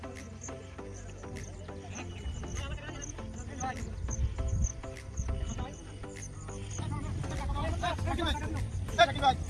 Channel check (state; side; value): identical; both; correlation 1.00